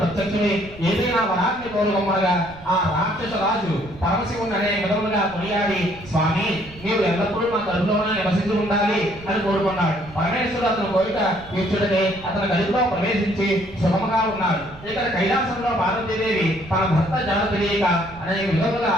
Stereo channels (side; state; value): right; noise; rumble, 19 dB below the sound